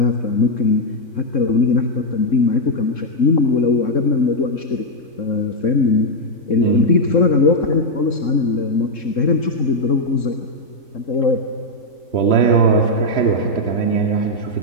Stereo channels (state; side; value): late; right; 3.7 ms